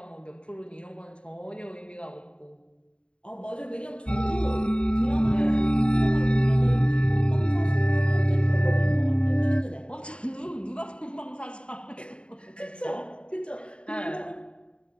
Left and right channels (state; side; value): late; right; 0.055 ms